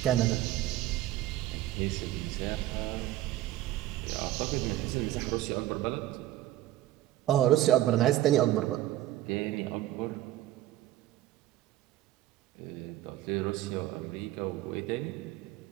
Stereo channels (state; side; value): quieter; left; 14.4 dB